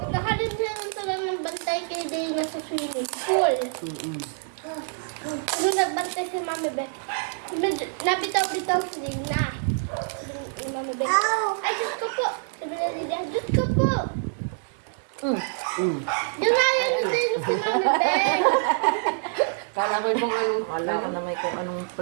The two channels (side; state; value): left; silent; 61 dB below the other